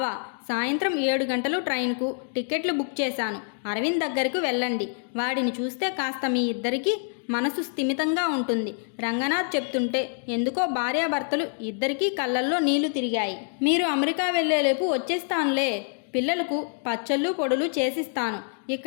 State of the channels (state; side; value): silent; right; 61 dB below the other